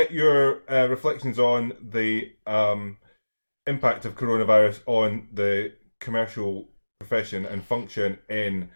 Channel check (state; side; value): inverted; both; correlation -1.00